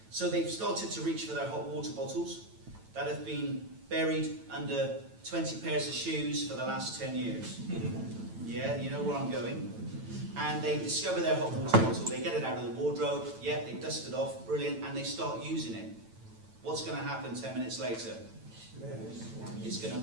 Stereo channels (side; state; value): left; late; 9.0 ms